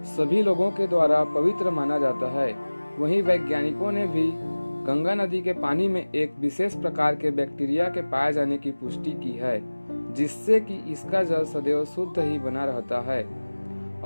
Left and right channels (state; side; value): inverted; both; correlation -1.00